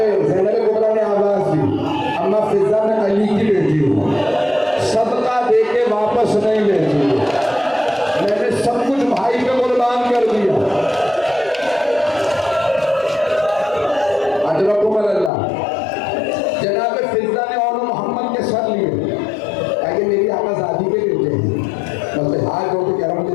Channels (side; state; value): right; drops out; at 15.3 s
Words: ज़ैनब कुबरा ने आवाज दी, अम्मा फिजा में अली की बेटी हूँ, सदका दे के वापस नहीं लेती, मैंने सब कुछ भाई पे कुर्बान कर दिया। अजरकुम अल्लाह। जनाब फिजा ने और मोहम्मद के सर लिए, ताकि मेरी आज़ादी के बेटे हैं, बस हाथ जोड़ के कह रहा हूँ,